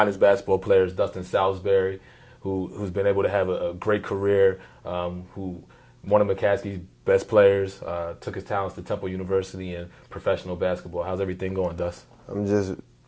basketball players, Dustin Salisbery, who's been able to have a great career, who one of McCaskey's best players, took his talents to Temple University in professional basketball. How's everything going, Dust? I'm just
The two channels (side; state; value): both; identical; correlation 1.00